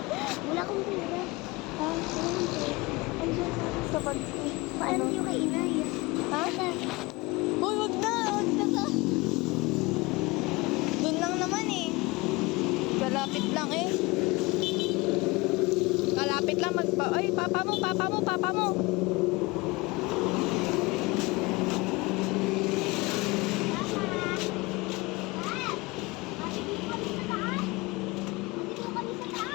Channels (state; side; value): quieter; right; 23.6 dB